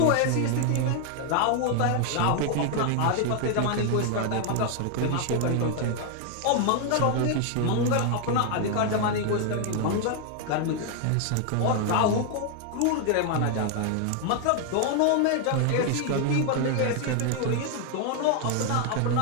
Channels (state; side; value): different; both; correlation 0.00